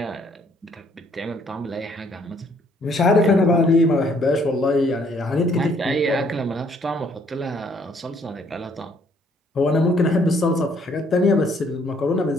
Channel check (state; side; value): normal; both; correlation 0.65